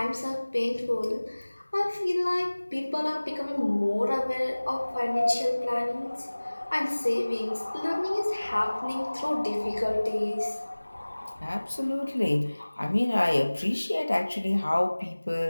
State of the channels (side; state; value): both; inverted; correlation -1.00